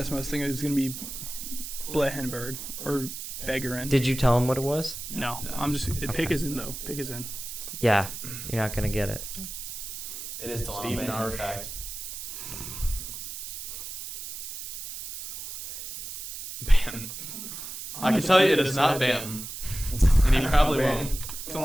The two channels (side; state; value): right; noise; hiss, 8 dB below the sound